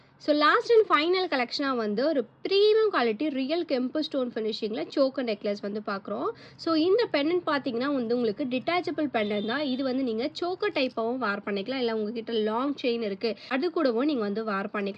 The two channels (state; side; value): identical; both; correlation 1.00